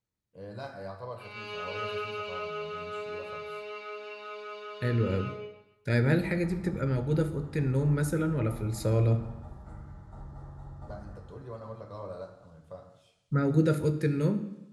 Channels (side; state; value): both; identical; correlation 1.00